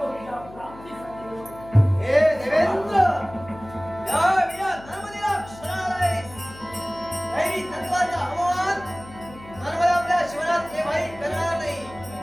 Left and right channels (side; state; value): left; noise; hum, 18 dB below the sound